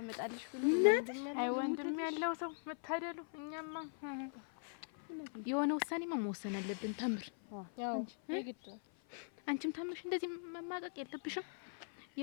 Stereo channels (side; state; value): right; silent; 51 dB below the other